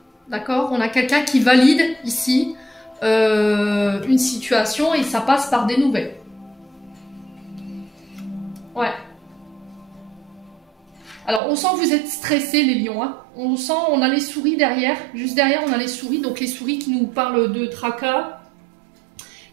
D'accord, on a quelqu'un qui valide ici une situation et ça passe par des nouvelles. Ouais. Alors on sent que vous êtes stressés les lions. On sent, on a les souris derrière. Juste derrière on a les souris. Donc les souris qui nous parlent de tracas,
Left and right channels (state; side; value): drops out; left; at 11.4 s